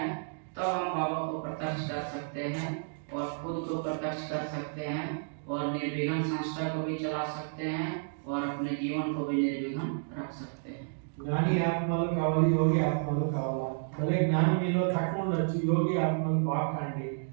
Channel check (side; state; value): left; silent; digital silence